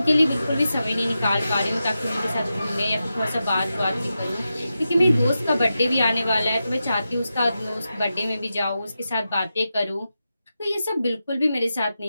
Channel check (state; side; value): inverted; both; correlation -0.90